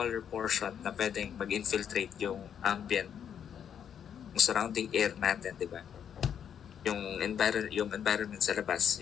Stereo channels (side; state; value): right; quieter; 8.5 dB